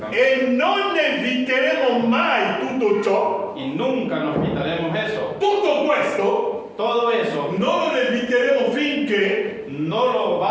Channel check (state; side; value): identical; both; correlation 1.00